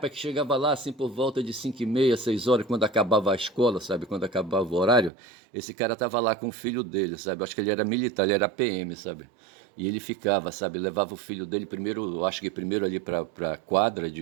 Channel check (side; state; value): left; drops out; at 5.1 s